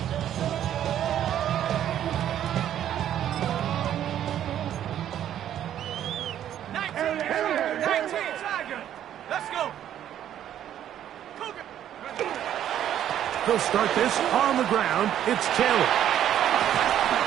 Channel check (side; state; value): left; quieter; 10.8 dB